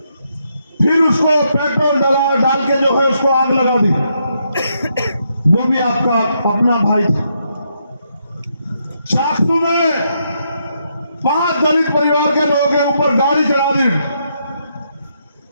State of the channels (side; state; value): both; inverted; correlation -0.78